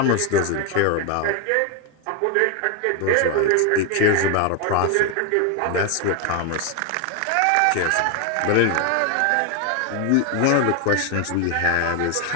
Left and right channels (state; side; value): different; both; correlation 0.01